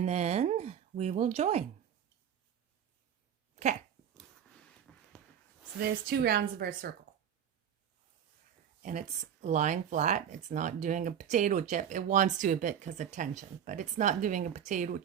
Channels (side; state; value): left; quieter; 8.8 dB